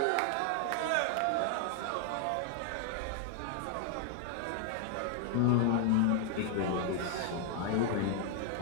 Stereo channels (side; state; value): both; different; correlation 0.00